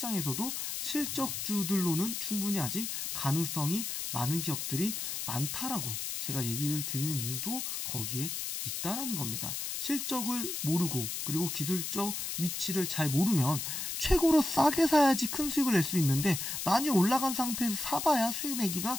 실적주들로는 충분히 아직 가능성이 많은 기업들이 많다라고 제가 얘기를 드리는 이유도 거기에 있다라는 겁니다. 실적을 모르고 그리고 기술적 위치를 잘 모르면 최고로 싸게 사야지 큰 수익을 낼 수 있는데, 많이 올라간 상태에서 사봐야 수익 내기가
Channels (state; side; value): noise; left; hiss, 4 dB below the sound